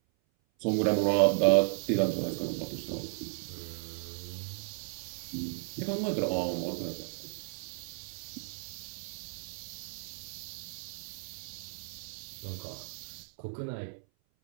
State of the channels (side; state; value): left; silent; 55 dB below the other